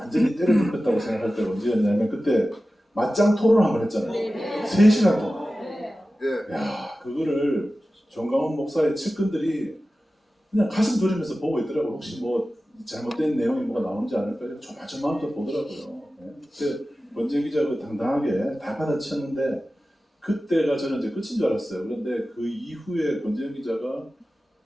때려 눕혔다고 생각할 때가 언제였냐면 그때 맞짱 토론을 한번 했잖아요. 3시간 동안. 야, 그거를 정광훈 목사의 측근들이 그냥 가슴 졸이면서 보고 있더라고요. 혹시 뭐 잘못된 내용이 뭐가 나오는지 않을까 조마조마하면서 보더라고요. 네. 그때 권지현 기자가 당당하게 다 받아쳤는데 그때가 저는 이제 끝인 줄 알았어요. 그런데 그 이후에 권지현 기자가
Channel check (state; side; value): normal; both; correlation 0.95